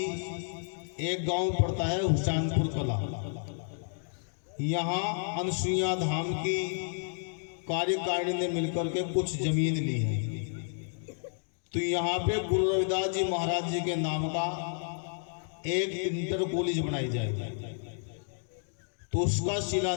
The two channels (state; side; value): silent; right; digital silence